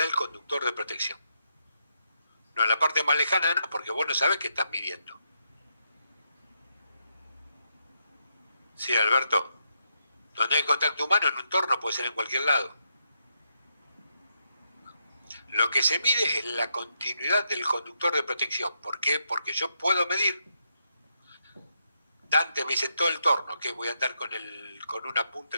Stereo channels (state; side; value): inverted; both; correlation -0.81